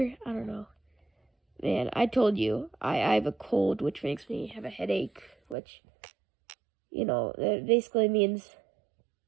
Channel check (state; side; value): drops out; left; at 5.6 s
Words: I don't know. Man, I told you, I have a cold, which makes me have a headache, which, that basically means,